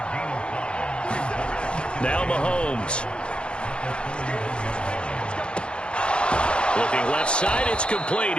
Now Mahomes. Looking left side, it's complete.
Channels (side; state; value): right; late; 0.055 ms